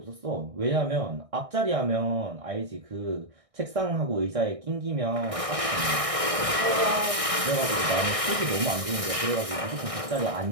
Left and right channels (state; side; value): late; left; 1.6 ms